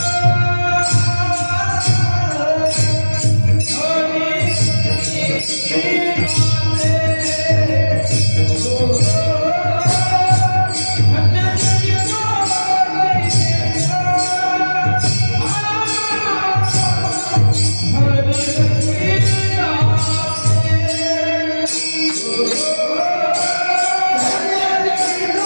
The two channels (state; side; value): inverted; both; correlation -1.00